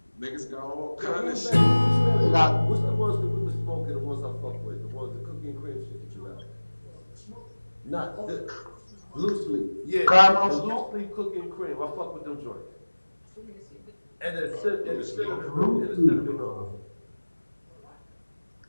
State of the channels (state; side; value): inverted; both; correlation -1.00